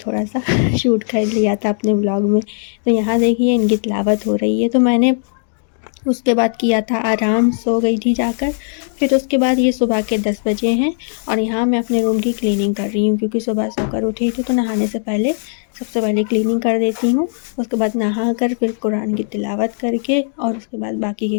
सा शूट कर लिया था अपने व्लॉग में। तो यहाँ देखिए, इनकी तिलावत हो रही है। तो मैंने उसके बाद किया था आराम, सो गई थी जाकर। फिर उसके बाद ये सुबह के 10 बजे हैं और यहाँ मैं अपने रूम की क्लीनिंग कर रही हूँ क्योंकि सुबह सोकर उठी थी तो नहाने से पहले सबसे पहले क्लीनिंग कर देती हूँ। उसके बाद नहा कर फिर कुरान की तिलावत करके और उसके बाद बाकी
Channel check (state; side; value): silent; right; digital silence